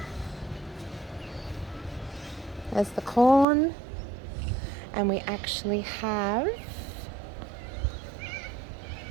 There's the corn, and we actually have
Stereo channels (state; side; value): drops out; left; at 3.5 s